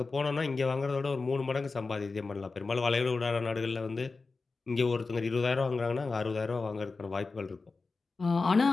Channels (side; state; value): right; quieter; 4.0 dB